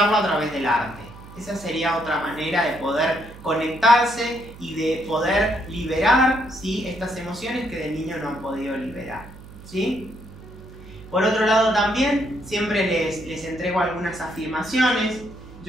a través del arte. Esa sería otra manera de poder conectarse y de poder liberar, ¿sí?, estas emociones que de niño no han podido liberar, ¿sí? Por otro lado también, siempre les entrego algunas afirmaciones.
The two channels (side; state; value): right; noise; hum, 17 dB below the sound